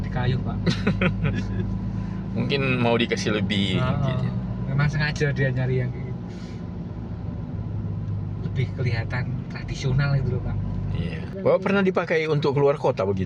kayu Pak. Mungkin mau dikasih lebih gitu. Memang sengaja dia nyari yang kayak gitu. lebih kelihatan tradisional itu loh Pak. Iya. Bapak pernah dipakai untuk keluar kota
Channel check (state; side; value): identical; both; correlation 1.00